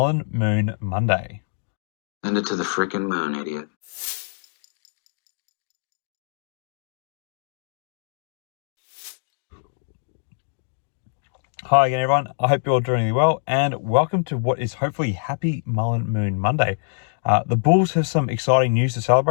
Moon Monday? Send it to the frickin' moon, idiot. Hi again, everyone. I hope you're all doing really well, and welcome to what is hopefully Happy Mullen Moon Monday. The Bulls have some exciting news to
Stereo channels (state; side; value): silent; right; 63 dB below the other